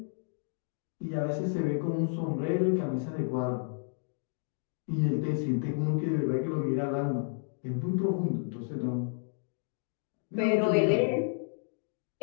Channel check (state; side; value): silent; right; 57 dB below the other